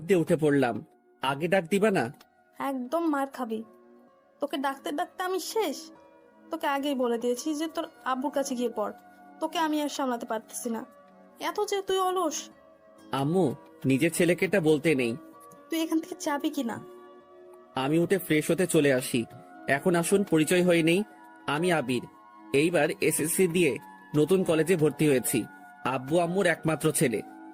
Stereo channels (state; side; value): identical; both; correlation 1.00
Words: দিয়ে উঠে পড়লাম। আগে ডাক দিবা না? একদম মার খাবি। তোকে ডাকতে ডাকতে আমি শেষ। তোকে আগেই বলে দিয়েছি যে তোর আব্বুর কাছে গিয়ে পড়। তোকে আমি আর সামলাতে পারতেছি না। এত যে তুই অলস। আম্মু, নিজের ছেলেকে এটা বলতে নেই। তুই এখান থেকে যাবি কিনা? আমি উঠে ফ্রেশ হতে চলে আসি। এখন আসুন পরিচয় হয়ে নেই। আমি আবির। এইবার এসএসসি দিয়ে নতুন কলেজে ভর্তি হয়েছি। আব্বু আম্মুর একমাত্র ছেলে।